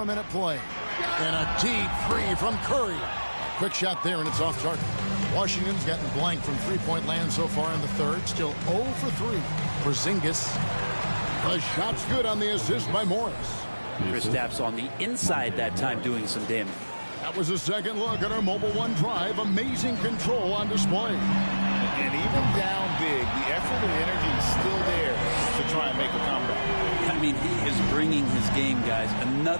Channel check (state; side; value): inverted; both; correlation -1.00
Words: a minute play. And a deep 3 from Curry. Quick shot there, and it's off target. Washington's gotten blank from three-point land so far in the third. Still 0 for 3. Porzingis. The shot's good on the assist by Morris. Kristaps on the inside that time doing some damage. That was a second look at our Mobile One drive. Amazing control on display. And even down big, the effort and energy is still there to try and make a comeback. I mean, he is bringing his game, guys.